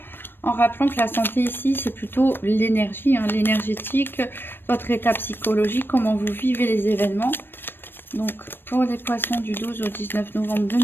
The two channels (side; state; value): right; late; 0.098 ms